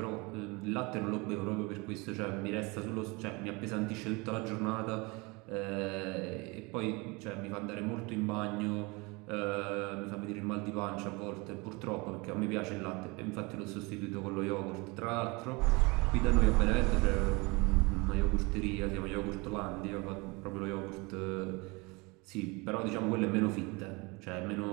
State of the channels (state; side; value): quieter; left; 26.6 dB